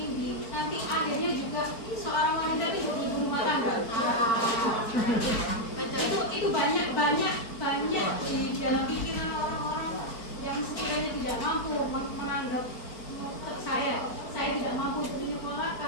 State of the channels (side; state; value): right; late; 4.4 ms